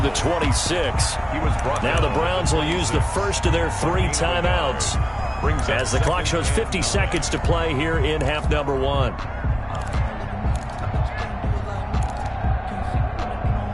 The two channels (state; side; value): identical; both; correlation 1.00